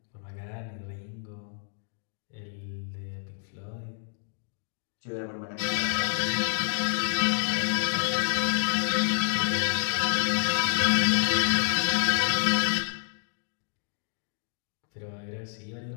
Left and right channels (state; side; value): silent; right; digital silence